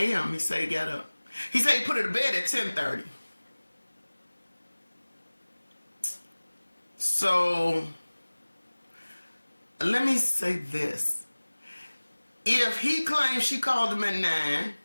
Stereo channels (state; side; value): inverted; both; correlation -1.00